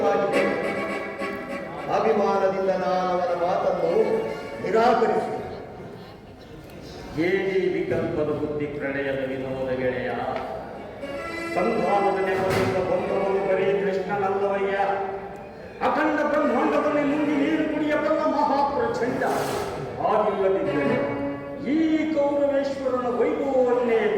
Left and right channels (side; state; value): both; identical; correlation 1.00